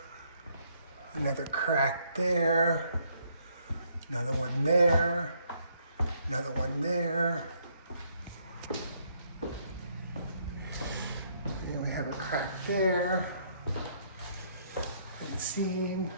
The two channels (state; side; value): inverted; both; correlation -0.70